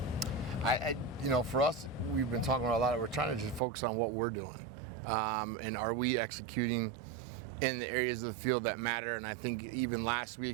For us, we've been talking about a lot. We're trying to just focus on what we're doing, and are we executing in the areas of the field that matter? And I think even last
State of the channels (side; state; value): left; drops out; at 3.6 s